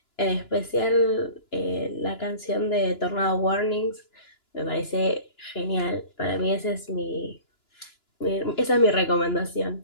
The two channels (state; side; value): late; right; 2.9 ms